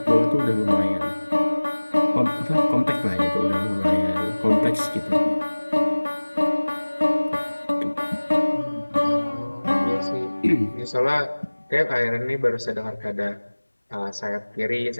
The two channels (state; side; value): inverted; both; correlation -1.00